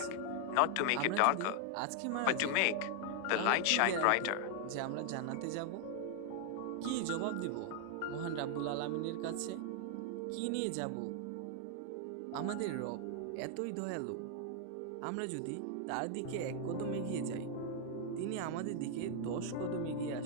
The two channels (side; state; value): both; different; correlation 0.00